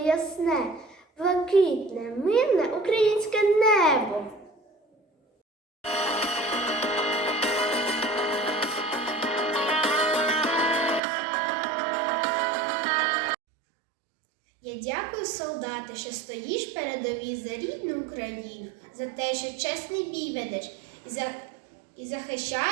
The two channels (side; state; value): left; drops out; at 11.0 s